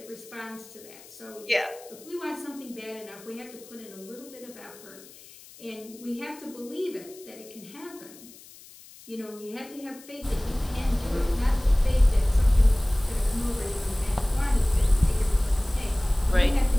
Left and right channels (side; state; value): left; noise; hiss, 21 dB below the sound